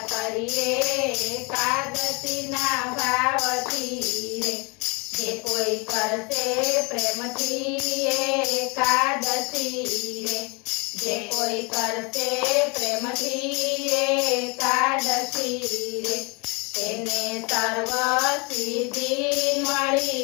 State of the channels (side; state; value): right; quieter; 30.1 dB